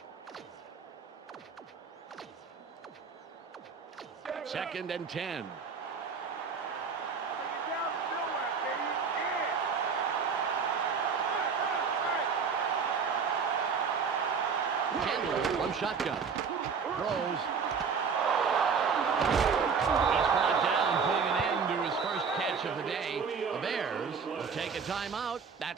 Second and 10. Bring it down to nowhere, baby. Yeah. Right. Chandler from shotgun. Throws. He's brought down, putting an end to his first catch of the day. The Bears will take a timeout.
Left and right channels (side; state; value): left; quieter; 5.9 dB